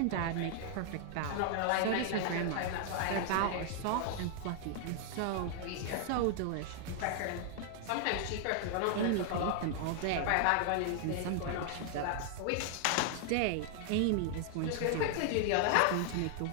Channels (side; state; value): both; different; correlation 0.00